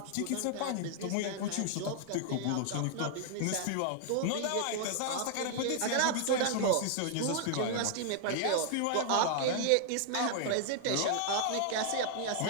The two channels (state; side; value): different; both; correlation 0.00